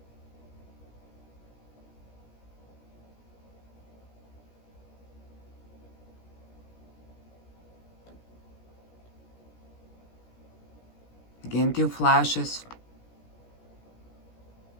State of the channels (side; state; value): right; late; 17 ms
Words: Again, two flashes.